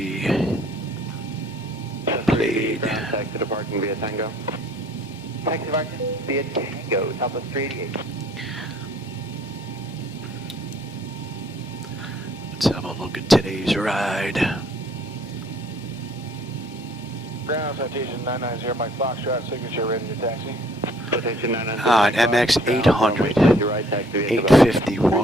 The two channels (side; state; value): both; normal; correlation 0.59